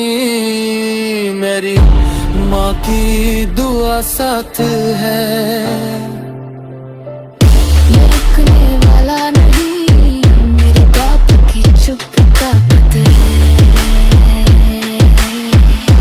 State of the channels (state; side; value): identical; both; correlation 1.00